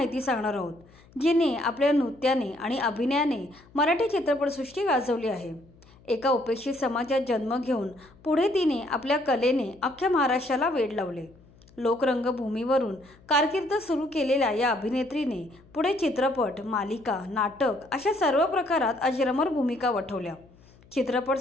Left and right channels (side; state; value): left; noise; hum, 27 dB below the sound